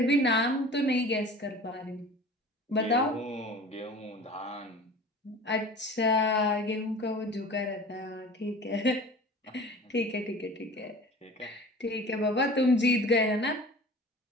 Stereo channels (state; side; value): normal; both; correlation 0.41